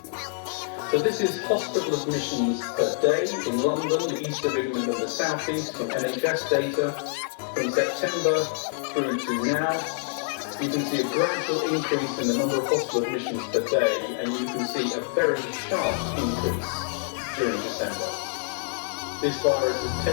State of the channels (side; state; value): right; silent; 61 dB below the other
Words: So this is hospital admissions per day in London, the east of England and the south-east from NHS data from September through to now. You can see a gradual increase in the number of hospital admissions per day, and you can see a very sharp increase during December. This virus has